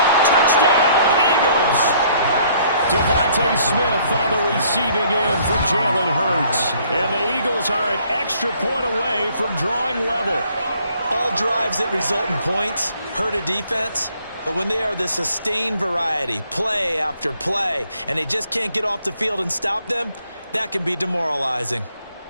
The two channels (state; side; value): inverted; both; correlation -0.62